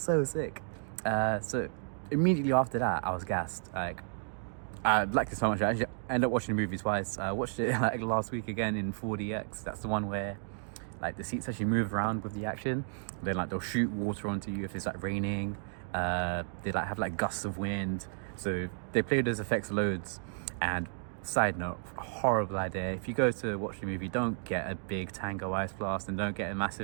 sick. So immediately after that, I was gassed. Like, I liked it so much. I actually ended up watching the movie twice. I watched it like last week again in 4DX. That's the one where like the seats actually move around with the action. Then like they'll shoot water onto you if it's like raining. They like have like gusts of wind. So they play those effects loads. And side note, horrible idea. If you go to watch the movie, don't get a big Tango Ice Blast, and don't get a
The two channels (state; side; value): silent; left; digital silence